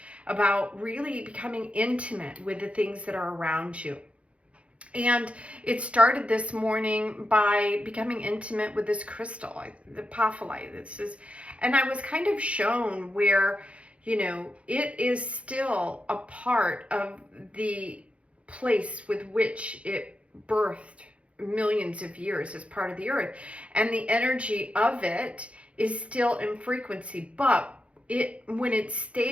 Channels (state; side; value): late; left; 0.062 ms